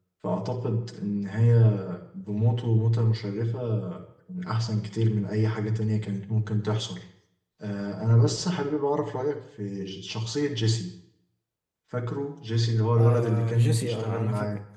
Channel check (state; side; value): identical; both; correlation 1.00